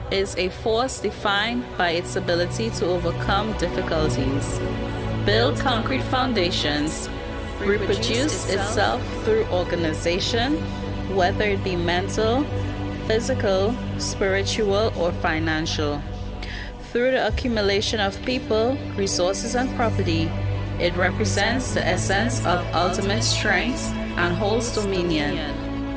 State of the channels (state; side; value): identical; both; correlation 1.00